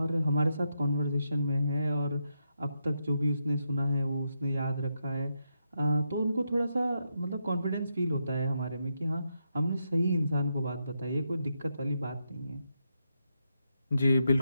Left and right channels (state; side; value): inverted; both; correlation -0.83